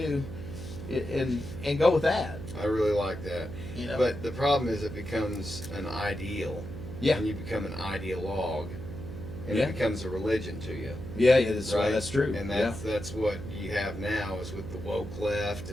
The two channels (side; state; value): right; noise; hum, 10 dB below the sound